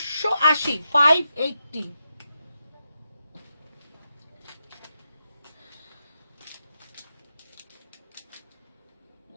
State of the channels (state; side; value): inverted; both; correlation -0.86